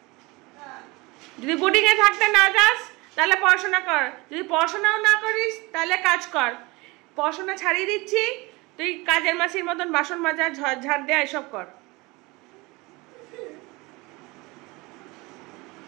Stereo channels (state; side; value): quieter; left; 24.1 dB